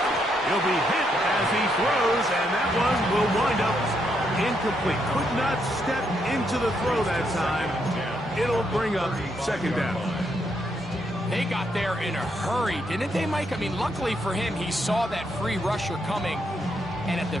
He'll be hit as he throws, and that one will wind up incomplete. Could not step into the throw that time. It'll bring up 2nd down. They got there in a hurry, didn't they, Mike? I mean, luckily for him, he saw that free rusher coming, and at the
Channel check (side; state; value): both; normal; correlation 0.77